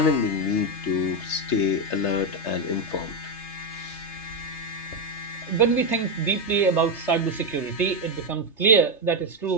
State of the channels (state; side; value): late; right; 3.3 ms